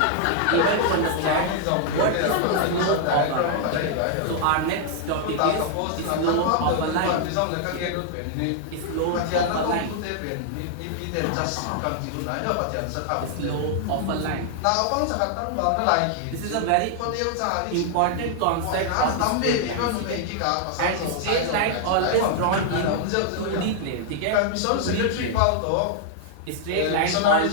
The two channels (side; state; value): both; different; correlation 0.00